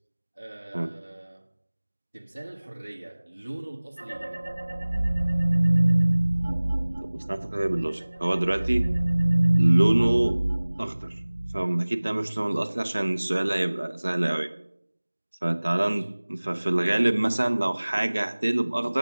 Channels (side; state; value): both; inverted; correlation -1.00